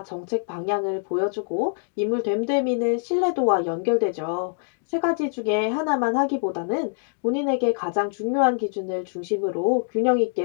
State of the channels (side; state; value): right; silent; digital silence